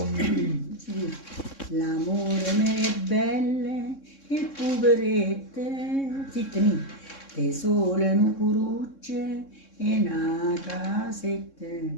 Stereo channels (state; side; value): late; right; 3.6 ms